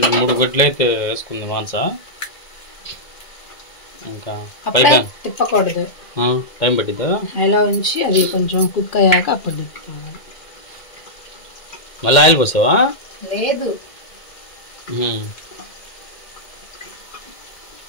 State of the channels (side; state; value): right; late; 2.1 ms